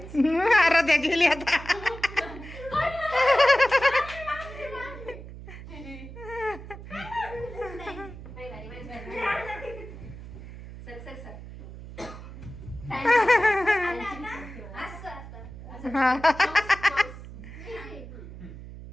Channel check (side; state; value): right; noise; hum, 13 dB below the sound